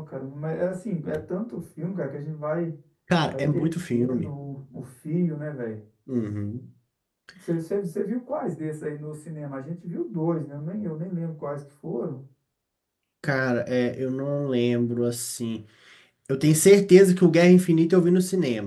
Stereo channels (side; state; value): both; identical; correlation 1.00